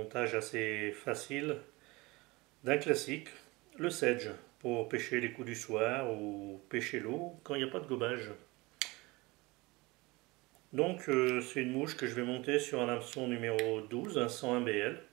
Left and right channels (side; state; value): left; quieter; 23.3 dB